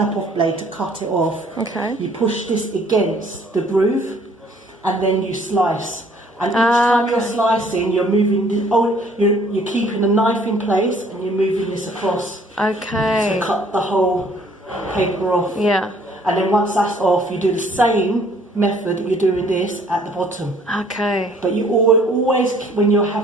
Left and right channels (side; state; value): both; normal; correlation 0.59